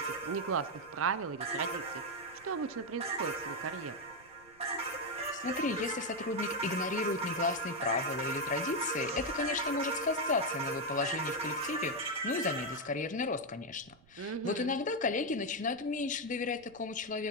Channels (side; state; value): right; noise; rumble, 28 dB below the sound